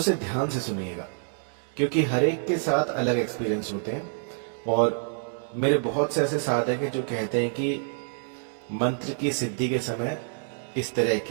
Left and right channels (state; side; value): silent; left; digital silence